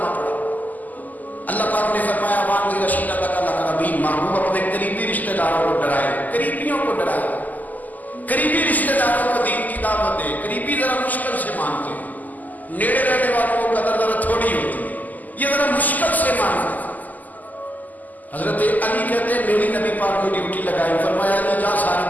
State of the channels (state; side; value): late; right; 0.082 ms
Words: پڑھا. اللہ پاک نے فرمایا وان رشیدہ تک الاقربین، محبوب اپنے قریبی رشتہ داروں کو ڈرائے، قریبیوں کو ڈرائے. قریبی رشتہ داروں کو دین کی دعوت دے. قریبی ذرا مشکل سے مانتے ہیں، نیڑے رہنے والوں کو قدر ذرا تھوڑی ہوتی ہے، یہ ذرا مشکل سے مانتے ہیں. حضرت علی کہتے ہیں میری نبی پاک نے ڈیوٹی لگائی، فرمایا علی جا ساری